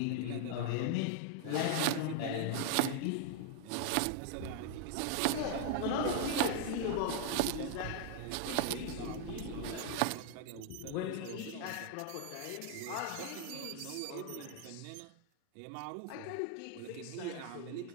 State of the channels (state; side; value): different; both; correlation 0.00